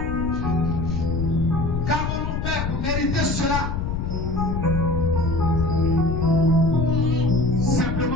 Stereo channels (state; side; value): noise; left; rumble, 2 dB below the sound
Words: Qu'avons-nous fait pour mériter cela?